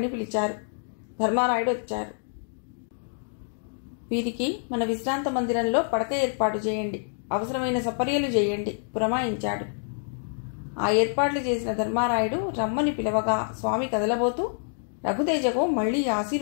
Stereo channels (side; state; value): right; silent; digital silence